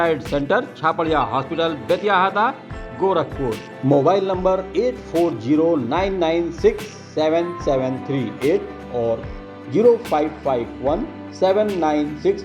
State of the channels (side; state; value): both; identical; correlation 1.00